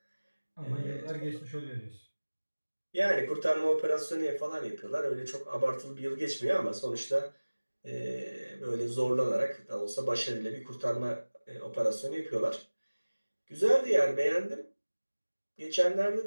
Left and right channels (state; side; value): inverted; both; correlation -1.00